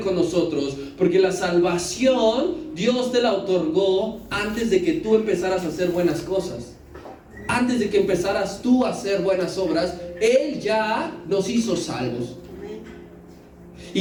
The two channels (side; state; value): both; identical; correlation 1.00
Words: nosotros, porque la salvación Dios te la otorgó antes de que tú empezaras a hacer buenas cosas. Antes de que empezaras tú a hacer buenas obras, Él ya nos hizo salvos.